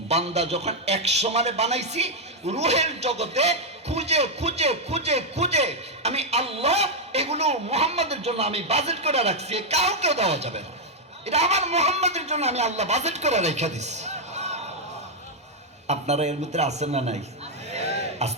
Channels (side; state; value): both; normal; correlation 0.00